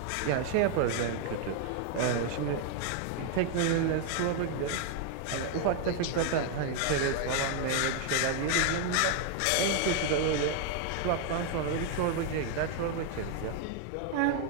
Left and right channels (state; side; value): different; both; correlation 0.01